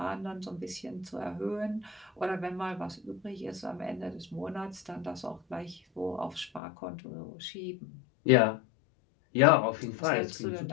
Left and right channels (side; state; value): right; drops out; at 6.6 s